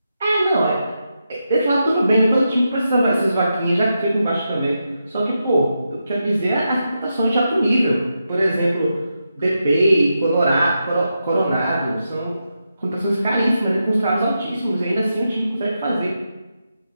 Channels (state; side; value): inverted; both; correlation -0.86